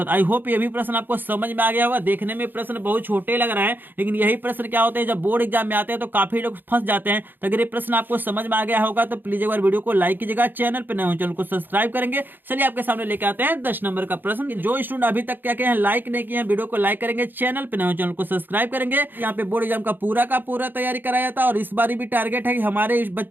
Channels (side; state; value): left; late; 0.092 ms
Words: आई होप ये भी प्रश्न आपको समझ में आ गया होगा। देखने में प्रश्न बहुत छोटे लग रहे हैं, लेकिन यही प्रश्न क्या होते हैं जब बोर्ड एग्जाम में आते हैं तो काफी लोग फंस जाते हैं। तो अगर ये प्रश्न आपको समझ में आ गया होगा तो प्लीज एक बार वीडियो को लाइक कीजिएगा, चैनल पर नए हो चैनल को सब्सक्राइब करेंगे। चलिए आपके सामने लेके आते हैं 10 नंबर का प्रश्न। जो स्टूडेंट अभी तक क्या किए हैं, लाइक नहीं किए हैं, वीडियो को लाइक करेंगे, चैनल पे नए हो चैनल को सब्सक्राइब करेंगे। यहाँ पे बोर्ड एग्जाम का पूरा तैयारी कराया था, और इस बार भी टारगेट है कि हमारे